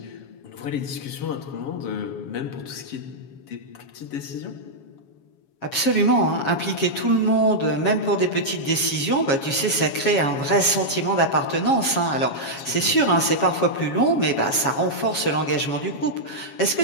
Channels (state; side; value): late; right; 7.3 ms